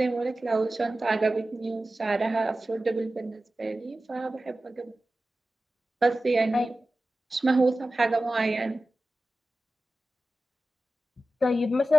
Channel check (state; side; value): normal; both; correlation 0.95